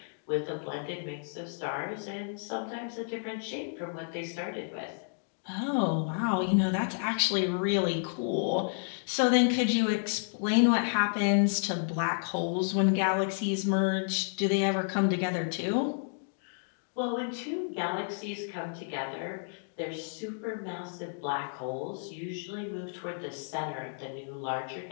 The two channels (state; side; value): silent; right; digital silence